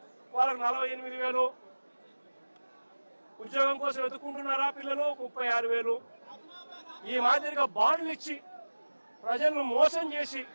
వాళ్ళకు 48,000, ఉద్యోగం కోసం వెతుక్కుంటున్నారా పిల్లలు, 36,000. ఈ మాదిరిగా బాండ్లు ఇచ్చి ప్రజలను మోసం చేసి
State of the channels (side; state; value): both; inverted; correlation -1.00